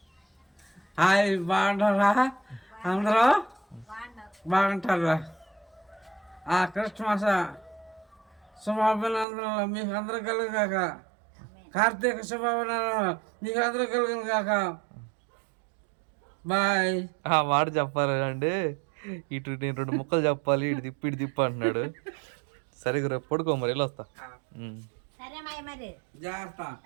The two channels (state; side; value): drops out; left; at 9.2 s